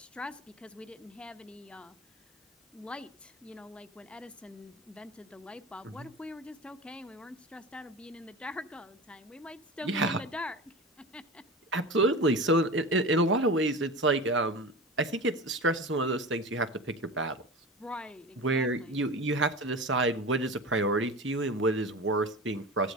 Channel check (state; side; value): normal; both; correlation 0.31